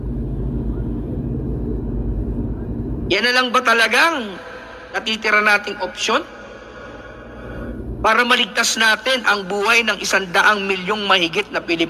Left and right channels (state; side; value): identical; both; correlation 1.00